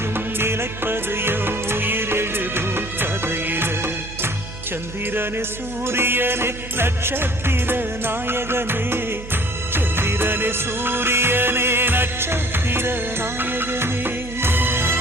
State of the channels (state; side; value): noise; right; hum, 12 dB below the sound